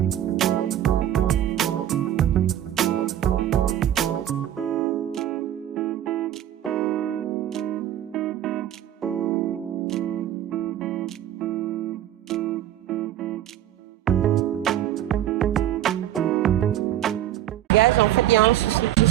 En fait, il y a un souci. Je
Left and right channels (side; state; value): left; quieter; 11.9 dB